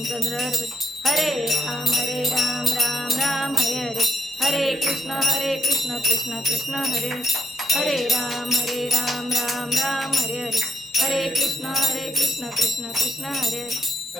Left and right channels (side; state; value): both; normal; correlation 0.78